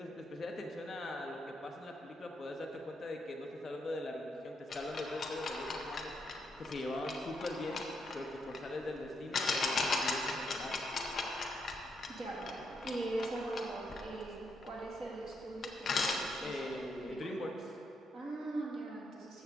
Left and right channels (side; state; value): both; normal; correlation 0.79